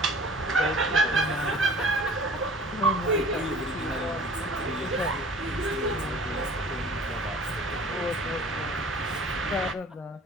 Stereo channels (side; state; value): both; normal; correlation 0.46